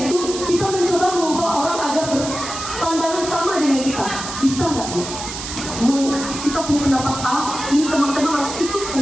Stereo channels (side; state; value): right; noise; hiss, 8 dB below the sound